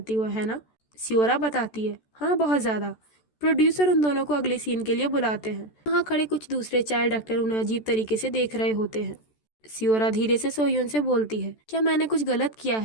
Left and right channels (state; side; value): late; right; 14 ms